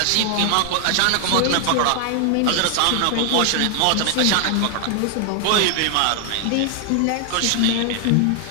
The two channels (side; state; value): both; different; correlation 0.00